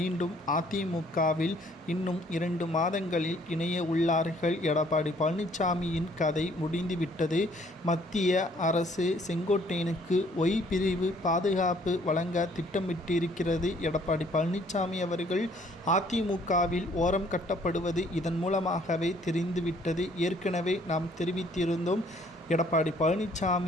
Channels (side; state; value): both; normal; correlation 0.61